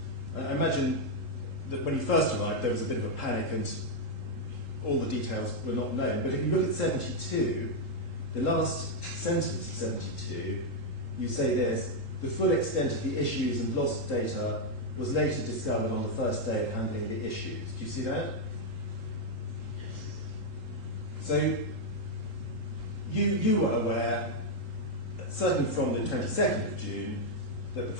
I imagine that when you first arrived there was a bit of a panic and all the details were not known. But if you look at 72, the last sentence of 72, you say this: the full extent of the issues and lost data was later discovered on the first day of handling the issues. Do you see that? So you were aware, certainly from the 22nd of June, that the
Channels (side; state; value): right; late; 3.8 ms